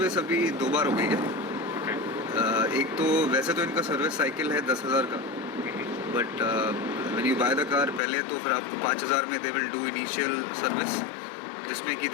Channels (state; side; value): drops out; right; at 8.0 s